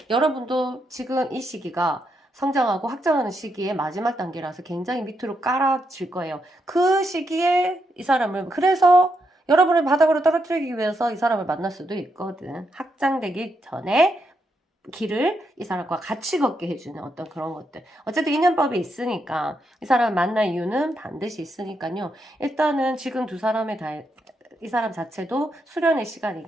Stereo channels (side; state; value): both; normal; correlation 0.81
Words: 여러분도 지금 이 시기가 성장하고 확장하는 시기의 마지막 단계라서 굉장히 밑으로 깔아질 거예요. 그 시기에 이 사람을, 그래서 여러분을 바닥으로 떨어뜨리기 위해서 이 사람을 만날 수도 있거든. 확장되기 전에 길을 이 사람과 같이 걷게 해주는 어떤 그런 것들. 어쨌든 인연법이 있으니까 이 사람을 만날 이유는 반드시 있으니까요. 일단은 지금 이 사람 자체도 수련의